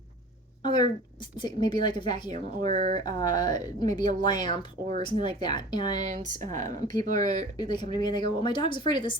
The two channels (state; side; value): normal; both; correlation 0.41